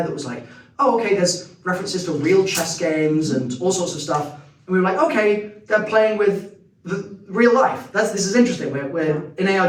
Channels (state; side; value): identical; both; correlation 1.00